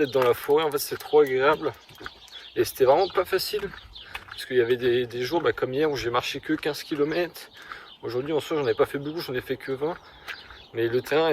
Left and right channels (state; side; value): identical; both; correlation 1.00